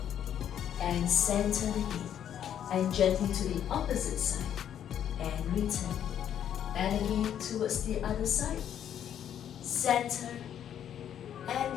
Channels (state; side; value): quieter; right; 9.8 dB